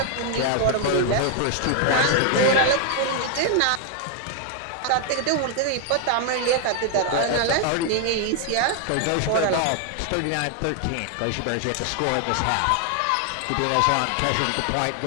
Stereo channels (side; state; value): both; different; correlation 0.00